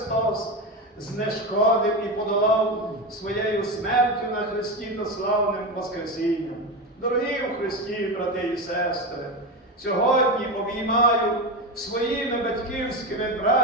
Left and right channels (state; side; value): normal; both; correlation 0.18